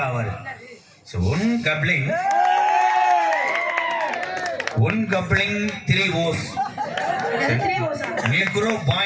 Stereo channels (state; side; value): identical; both; correlation 1.00